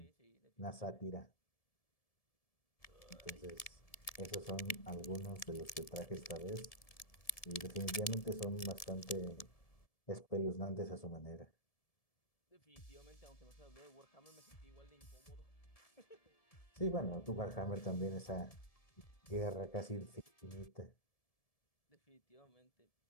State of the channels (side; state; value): right; late; 1.7 ms